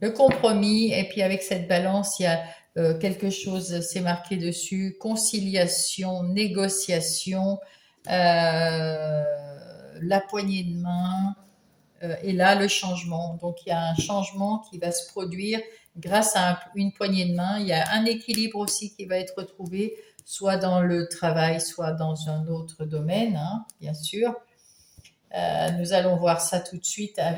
Le compromis, et puis avec cette balance, il y a quelque chose, c'est marqué dessus, conciliation, négociation, la poignée de main, et là le changement. Donc il y a un changement qui va se produire grâce à une poignée de main. Il y a un équilibre aussi qui va être retrouvé, soit dans le travail, soit dans un autre domaine, hein, bien sûr. Nous allons voir ça tout de suite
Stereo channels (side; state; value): both; identical; correlation 1.00